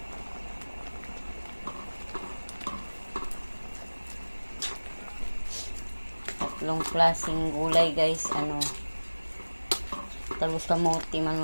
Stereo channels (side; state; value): both; inverted; correlation -1.00